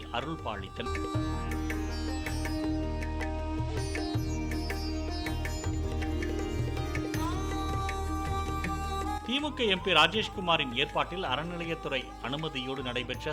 அருள் பாலித்தனர். திமுக எம்பி ராஜேஷ்குமாரின் ஏற்பாட்டில் அறநிலையத்துறை அனுமதியோடு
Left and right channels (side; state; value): both; identical; correlation 1.00